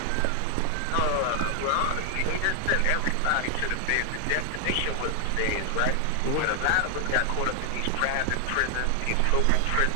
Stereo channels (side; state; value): both; different; correlation 0.00